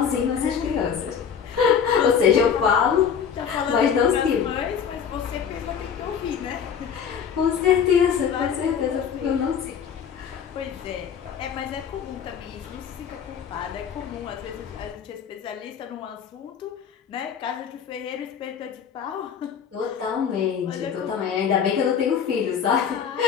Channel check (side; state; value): right; quieter; 7.5 dB